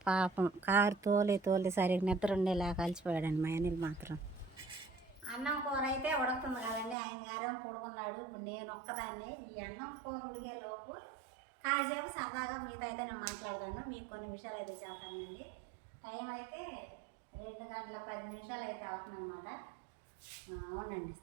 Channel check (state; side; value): drops out; left; at 7.0 s